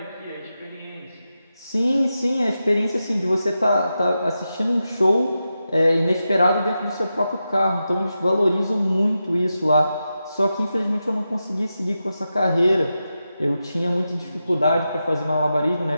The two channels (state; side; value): inverted; both; correlation -0.90